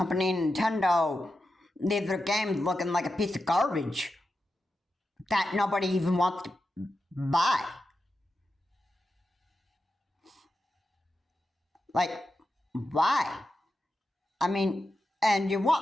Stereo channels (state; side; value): normal; both; correlation 0.90